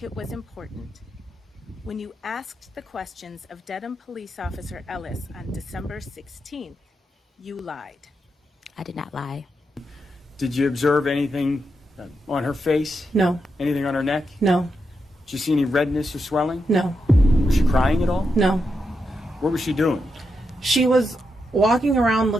it was important. When you asked the questions of Dedham Police Officer Ellis on December 16th, you lied. I did not lie. Did you observe anything on her face? No. Anything on her neck? No. Did you see any redness or swelling? No. Was she crying at all? No. What was she doing? She was walking around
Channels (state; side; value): normal; both; correlation 0.85